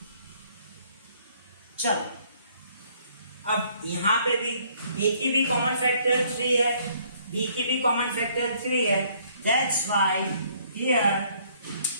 चलो अब यहाँ पे भी a की भी कॉमन फैक्टर 3 है, b की भी कॉमन फैक्टर 3 है. That's why here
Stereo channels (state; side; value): inverted; both; correlation -0.63